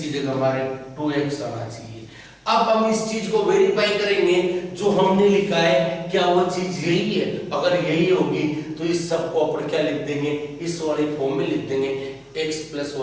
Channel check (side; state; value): both; identical; correlation 1.00